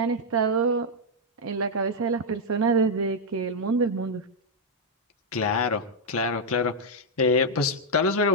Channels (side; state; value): both; normal; correlation -0.03